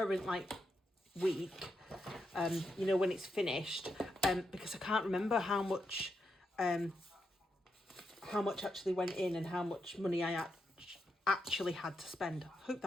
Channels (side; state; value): both; normal; correlation 0.83